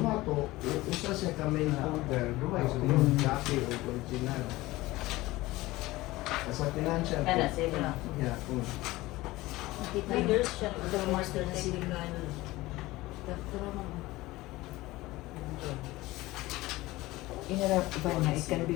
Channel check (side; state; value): right; quieter; 19.0 dB